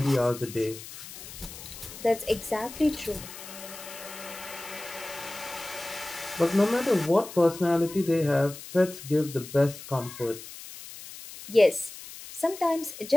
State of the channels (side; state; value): left; noise; hiss, 14 dB below the sound